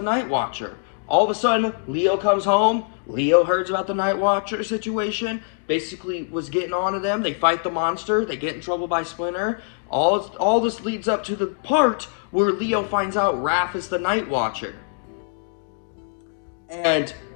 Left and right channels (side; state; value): right; silent; digital silence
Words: night watcher. All of a sudden, Leo comes home. Leo hears about the night watcher situation. Basically was getting on to them. They fight the monster. They get in trouble by Splinter. All this leads up to the part where Leo finds out Raph is the night watcher. And